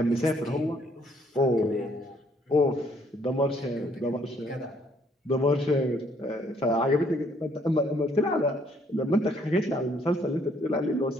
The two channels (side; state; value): both; normal; correlation 0.66